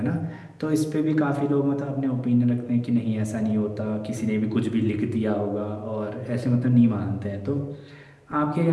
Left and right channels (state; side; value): identical; both; correlation 1.00